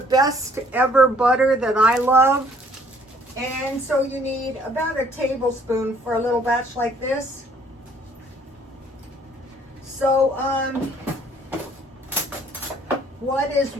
ever butter that I love. And so you need about a tablespoon for a little batch like this. So, what is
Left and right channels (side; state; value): both; normal; correlation 0.60